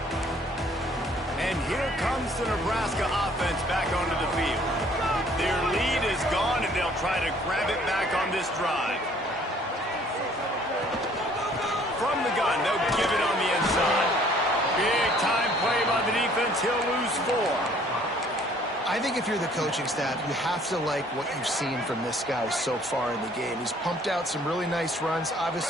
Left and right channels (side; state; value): both; normal; correlation 0.58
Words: And here comes the Nebraska offense back onto the field. Their lead is gone, and they'll try to grab it back on this drive. From the gun, they'll give it on the inside. Big time play by the defense. He'll lose 4. I think if you're the coaching staff, you have to like what you've seen from this guy so far in the game. He's pumped out some really nice runs.